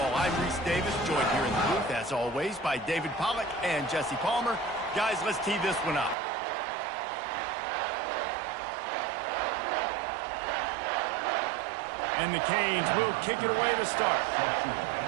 I'm Reese Davis, joined here in the booth, as always, by David Pollack and Jesse Palmer. Guys, let's tee this one up. And the Canes will kick it away to start.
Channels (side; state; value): left; drops out; at 6.2 s